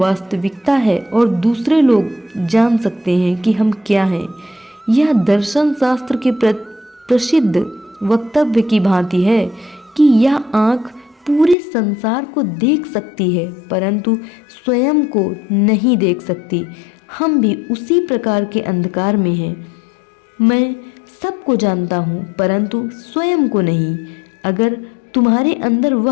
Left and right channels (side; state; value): right; drops out; at 11.6 s